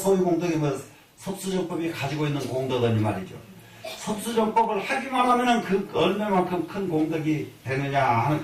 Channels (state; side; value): identical; both; correlation 1.00